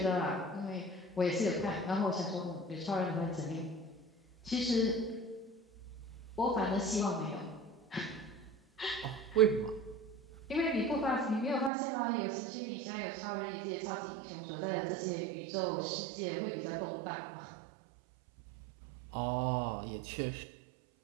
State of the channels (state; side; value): drops out; left; at 11.7 s